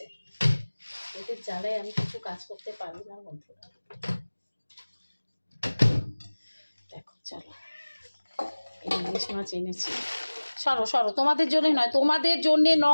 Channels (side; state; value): both; inverted; correlation -1.00